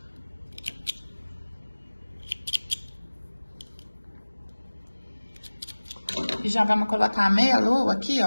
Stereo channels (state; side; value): inverted; both; correlation -1.00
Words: já vamos colocar a meia-lua aqui,